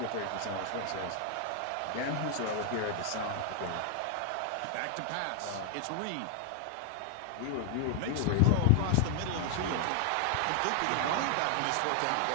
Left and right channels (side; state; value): both; different; correlation 0.00